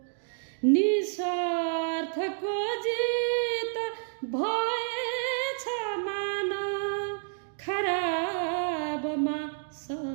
निस्वार्थको जित भएछ मान खराबमा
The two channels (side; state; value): left; silent; digital silence